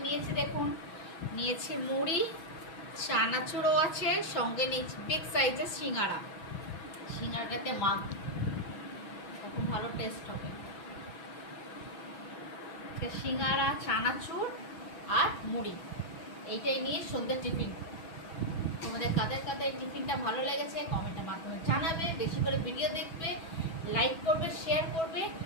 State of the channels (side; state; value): right; late; 6.2 ms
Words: নিয়েছি দেখুন। নিয়েছি মুড়ি, চানাচুরও আছে, সঙ্গে নিয়েছি বিগ সাইজের সিঙ্গারা। সিঙ্গারাটাতে মাখ, তখন ভালো টেস্ট হবে। সিঙ্গারা, চানাচুর আর মুড়ি, এইটাই নিয়ে সন্ধ্যে টিফিন। তোমাদের কাদের কাদের টিফিনটা ভালো লেগেছে কমেন্টের মাধ্যমে জানাবে। বেশি করে ভিডিও দেখবে, লাইক করবে, শেয়ার করবে